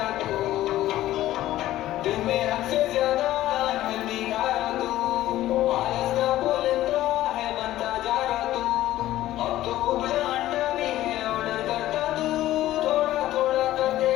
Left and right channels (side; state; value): right; quieter; 14.5 dB